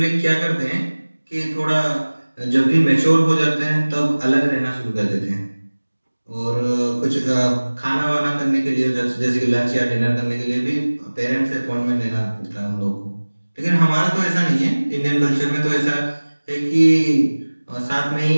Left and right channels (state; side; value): inverted; both; correlation -1.00